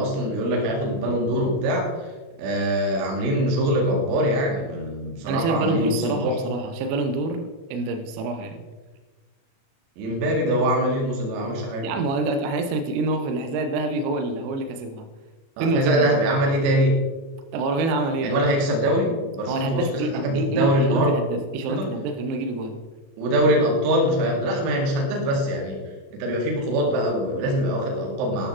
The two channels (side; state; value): left; late; 36 ms